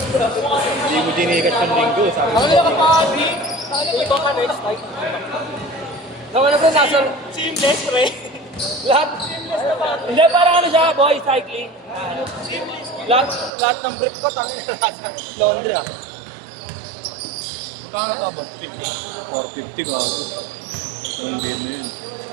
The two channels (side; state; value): left; drops out; at 13.5 s